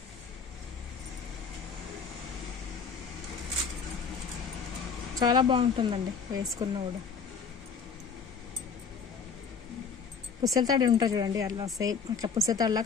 చాలా బాగుంటుందండి వేసుకున్నా కూడా. పుస్తల తాడు ఉంటుంది చూడండి, అలా సేమ్ అట్లా పుస్తల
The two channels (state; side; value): quieter; right; 5.8 dB